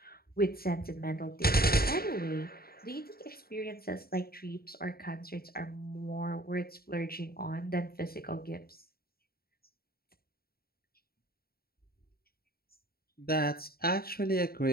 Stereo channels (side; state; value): right; late; 0.44 ms